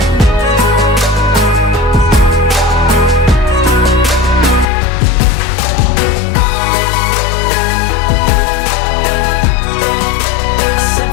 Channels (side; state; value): right; drops out; at 4.7 s